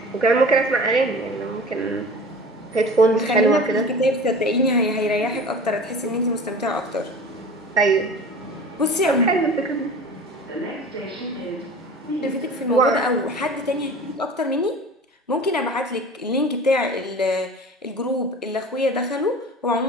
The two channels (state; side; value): normal; both; correlation 0.39